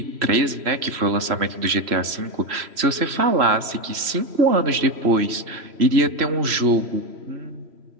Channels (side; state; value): left; late; 3.1 ms